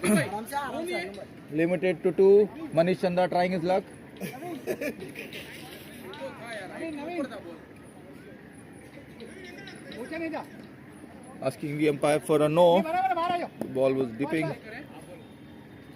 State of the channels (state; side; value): identical; both; correlation 1.00